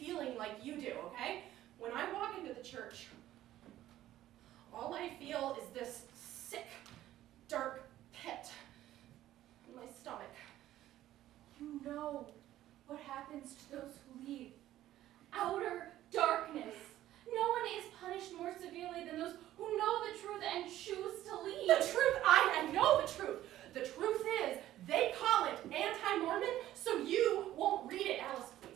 like you do, okay? When I walk into the church, all I feel is this sick, dark pit in my stomach. You know what happens to those who leave. Outer darkness. No one is punished more severely than those who know the truth and choose to leave. The truth, I know the truth. The truth is, they call it anti-Mormon, so you won't read it, Alice,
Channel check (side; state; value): left; quieter; 13.7 dB